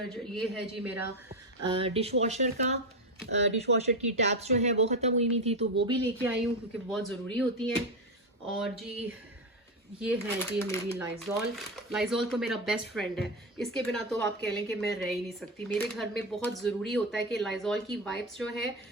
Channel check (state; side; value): normal; both; correlation 0.13